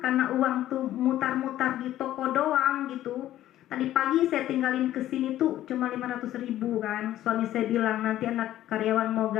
karena uang tuh mutar-mutar di toko doang gitu. Tadi pagi saya tinggalin ke sini tuh cuma 500.000 kan. Suami saya bilang nanti anak karyawan mau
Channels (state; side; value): quieter; right; 13.3 dB